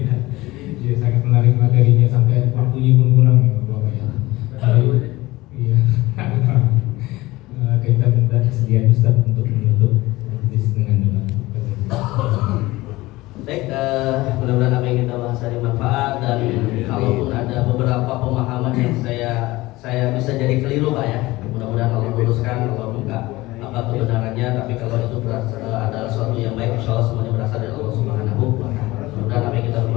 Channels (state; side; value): quieter; right; 19.5 dB